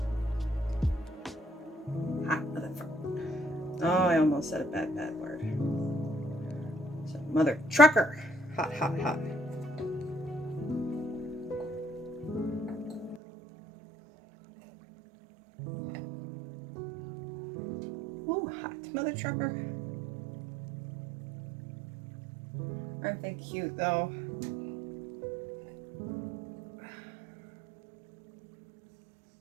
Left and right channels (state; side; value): drops out; left; at 13.2 s